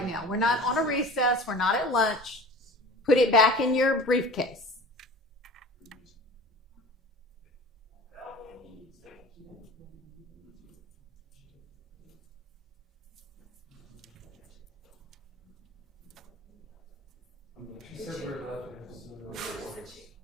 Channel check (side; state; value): both; normal; correlation 0.40